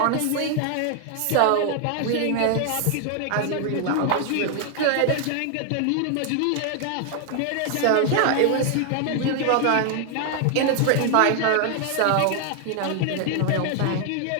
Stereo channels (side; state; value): both; different; correlation 0.00